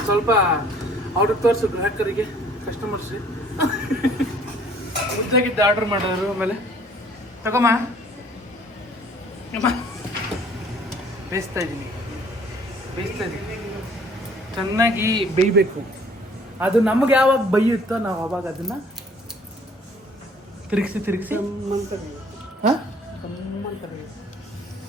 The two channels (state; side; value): normal; both; correlation 0.56